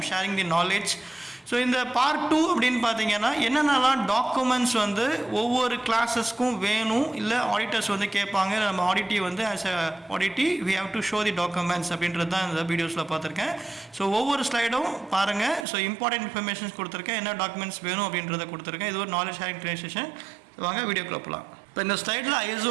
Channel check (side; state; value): left; drops out; at 15.7 s